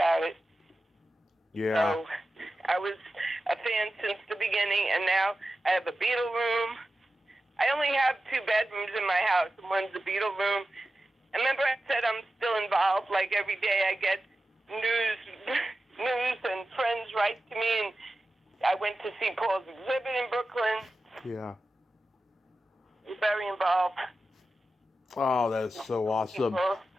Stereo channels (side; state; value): both; normal; correlation 0.93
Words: it. Yeah. So I was a fan since the beginning, and now I have a Beatle room. I only have 2 bedrooms in my house, and one's a Beatle room. And remember I said I'm still involved, like every day I get news and friends write to me, and I went to see Paul's exhibit in Brooklyn. Yeah. I'm very involved. Oh, that is so awesome.